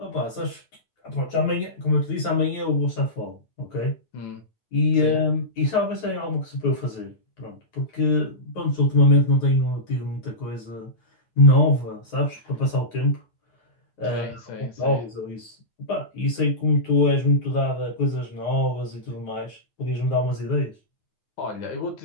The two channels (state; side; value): late; right; 9.3 ms